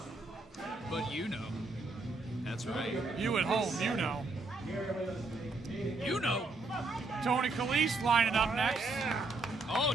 But you know. That's right. You at home, you know. You know. Tony Calise lining up next. Oh,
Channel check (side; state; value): left; quieter; 3.3 dB